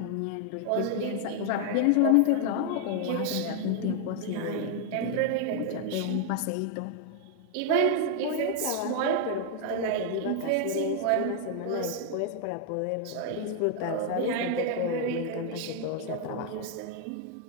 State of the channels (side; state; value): both; different; correlation 0.00